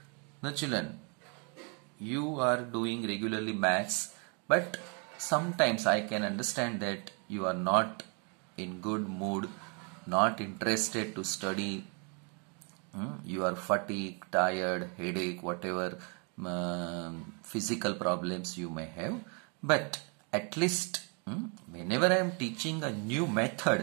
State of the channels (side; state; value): left; quieter; 36.2 dB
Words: Now children, you are doing regularly maths, but sometimes I can understand that you are not in good mood, not interested to study. You are fatigued, tired, headache, whatever physical problems you may have. But at least whenever I am teaching a new